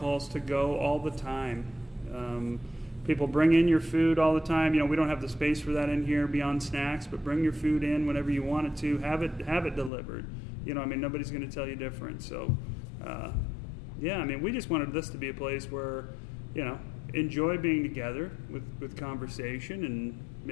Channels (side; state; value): right; drops out; at 9.9 s